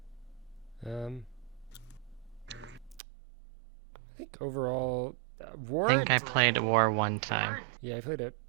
I think overall, War. I think I played War one time. Yeah, I played it.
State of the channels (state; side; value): drops out; left; at 3.0 s